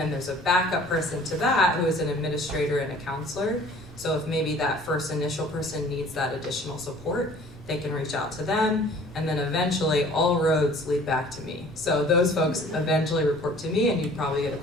there's a backup person to that who is an administrator and a counselor. So if maybe that first initial person needs that additional support, they can reach out to them, and then eventually all roads lead back to me. So those folks eventually report to me, and you'd probably get a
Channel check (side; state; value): both; normal; correlation 0.50